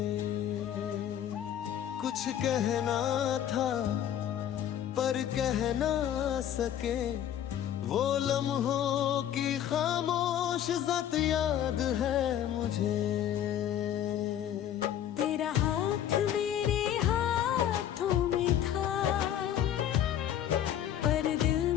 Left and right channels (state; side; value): quieter; right; 10.6 dB